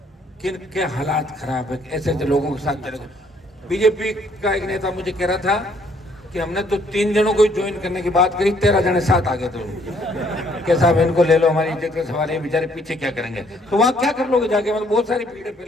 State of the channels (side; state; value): both; normal; correlation 0.65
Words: किन के हालात खराब है। ऐसे ऐसे लोगों के साथ चले। बीजेपी का एक नेता मुझे कह रहा था कि हमने तो 3 जनों को ज्वाइन करने की बात करी, 13 जने साथ आ गए थे। कि साहब इनको ले लो, हमारी इज्जत का सवाल है, बेचारे पीछे क्या करेंगे। तो वहाँ क्या कर लोगे जाके, मतलब बहुत सारी भीड़ है